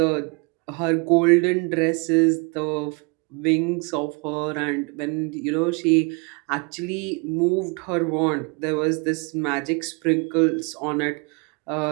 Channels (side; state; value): left; quieter; 32.2 dB